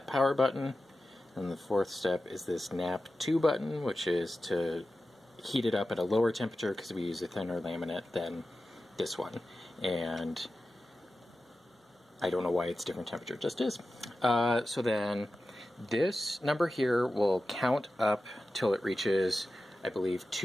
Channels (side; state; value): both; normal; correlation 0.93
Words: power button. And the 4th step is this nap 2 button, which is to heat it up at a lower temperature because we use a thinner laminate than this one. And I don't know why it's different temperature, it just is. So then this number here will count up till it reaches, I believe,